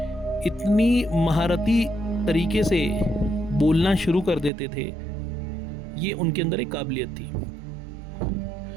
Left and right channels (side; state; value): left; drops out; at 4.5 s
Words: इतनी महारती तरीके से बोलना शुरू कर देते थे। ये उनके अंदर एक काबिलियत थी।